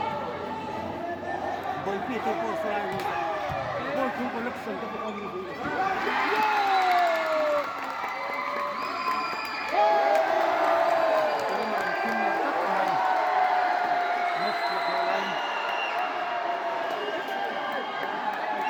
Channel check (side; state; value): both; identical; correlation 1.00